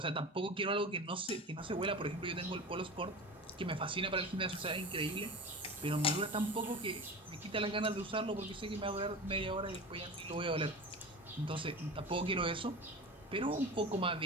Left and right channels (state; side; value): normal; both; correlation 0.31